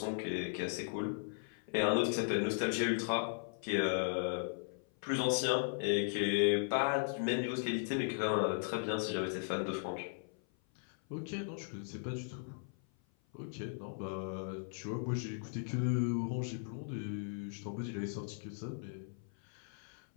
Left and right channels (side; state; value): right; silent; 53 dB below the other